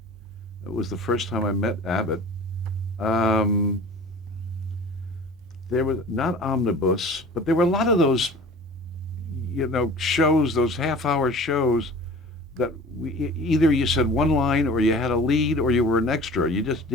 It was the first time I met Abbott. Um, there was not Omnibus, but there were a lot of those, shows, those half-hour shows that either you said one line or you had a lead or you were an extra. You just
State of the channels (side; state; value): both; normal; correlation 0.42